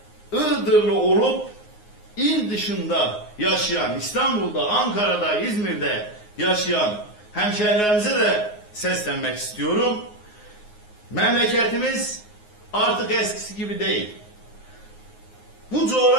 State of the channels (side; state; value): right; late; 9.6 ms